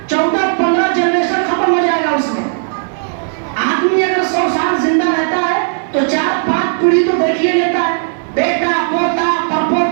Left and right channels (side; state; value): left; silent; 62 dB below the other